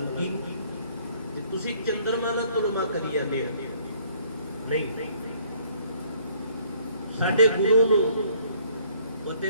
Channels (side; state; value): both; inverted; correlation -0.63